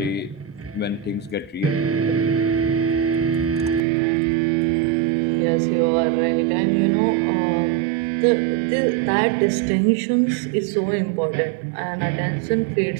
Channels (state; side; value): drops out; left; at 3.8 s